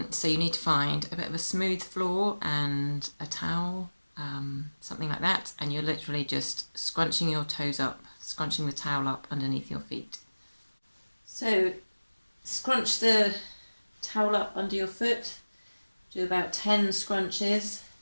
So you need to find a bit of a smooth floor and a towel, something like that, and you're literally just scrunching your toes up, scrunching the towel up underneath your feet. So scrunch the towel up under your foot, do about 10 scrunches,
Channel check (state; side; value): inverted; both; correlation -1.00